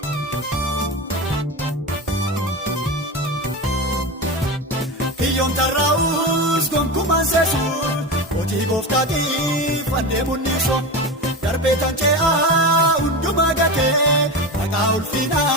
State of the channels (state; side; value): normal; both; correlation 0.23